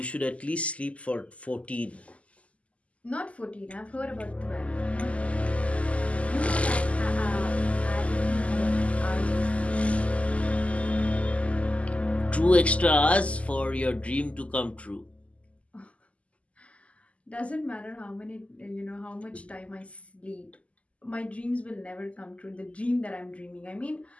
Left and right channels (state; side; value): late; right; 0.064 ms